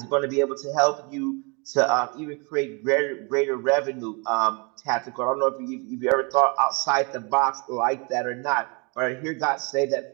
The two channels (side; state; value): left; quieter; 31.9 dB